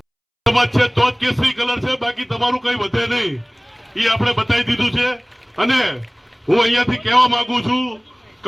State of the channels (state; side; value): identical; both; correlation 1.00